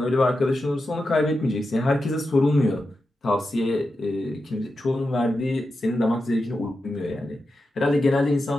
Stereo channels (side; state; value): both; normal; correlation 0.89